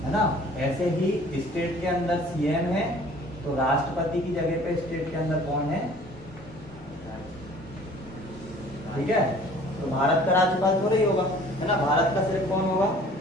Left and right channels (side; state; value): both; normal; correlation 0.51